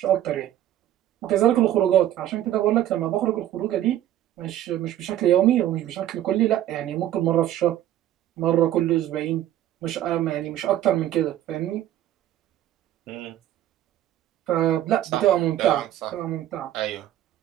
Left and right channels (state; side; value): quieter; left; 12.5 dB